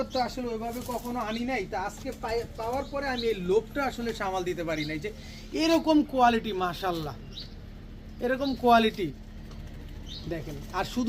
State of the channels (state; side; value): identical; both; correlation 1.00